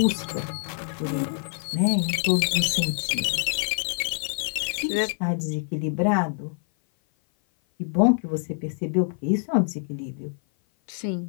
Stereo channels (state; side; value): silent; right; 56 dB below the other